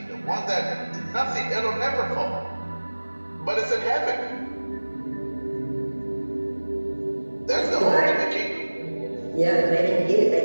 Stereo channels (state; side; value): inverted; both; correlation -1.00